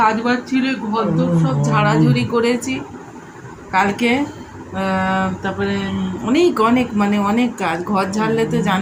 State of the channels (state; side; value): identical; both; correlation 1.00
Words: বাজ ছিল, ঘর দোর সব ঝাড়াঝুড়ি করেছি কালকে। তারপরে অনেক কাজ, ঘর ঝাড়লে তো